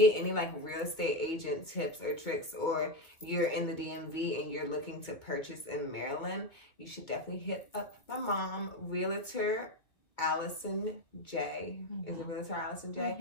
any real estate agent tips or tricks, or you're in the DMV and you're looking to purchase in Maryland, you should definitely hit up my mom, Realtor Allison J. Is it Realtor Allison J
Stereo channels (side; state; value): right; late; 2.2 ms